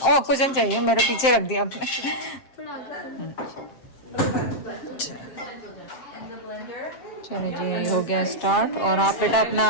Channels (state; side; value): late; right; 7.5 ms